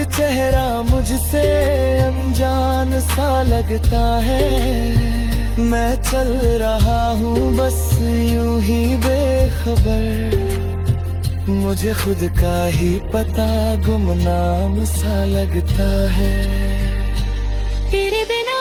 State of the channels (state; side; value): identical; both; correlation 1.00